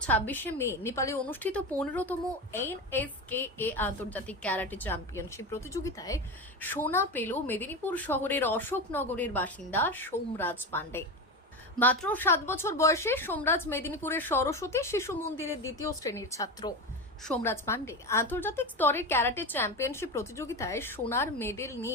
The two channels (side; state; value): both; normal; correlation 0.20